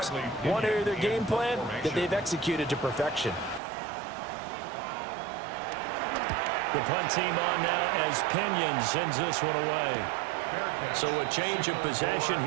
One area of their game plan that they've executed to perfection. The punt team on now as Pinion sends this one away. So a change of possession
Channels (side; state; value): left; drops out; at 3.6 s